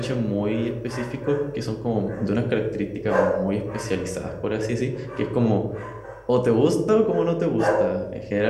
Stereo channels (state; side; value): identical; both; correlation 1.00